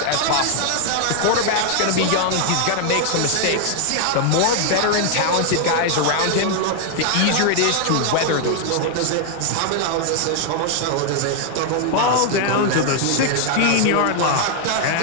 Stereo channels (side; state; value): both; different; correlation 0.00